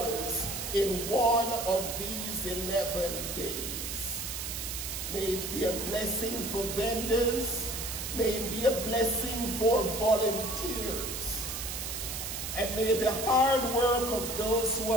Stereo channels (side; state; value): right; noise; hiss, 5 dB below the sound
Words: in one of these 11 days. May it be a blessing for vendors, may it be a blessing for volunteers, and may the hard work of those who